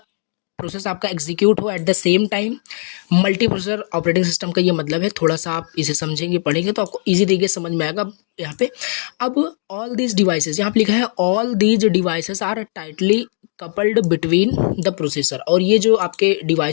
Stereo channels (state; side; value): silent; right; 56 dB below the other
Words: प्रोसेस आपका एग्जीक्यूट हो eight the same time. Multi processor operating system का ये मतलब है, थोड़ा सा आप इसे समझेंगे पढ़ेंगे तो आपको इजी तरीके से समझ में आएगा यहाँ पे। अब ऑल दीज डिवाइसेस, यहाँ पे लिखा है all these devices are tightly coupled between the processor, और ये जो आपके